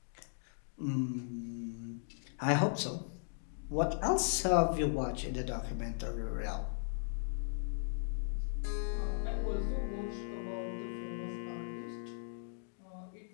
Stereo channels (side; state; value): right; silent; digital silence